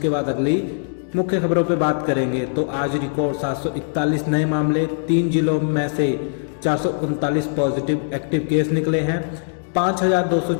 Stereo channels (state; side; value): silent; right; digital silence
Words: बाद अगली मुख्य खबरों पे बात करेंगे। तो आज रिकॉर्ड 741 नए मामले, 3 जिलों में से 439 पॉजिटिव एक्टिव केस निकले हैं।